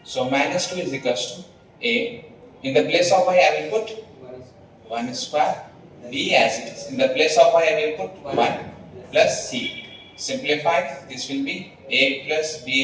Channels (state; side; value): identical; both; correlation 1.00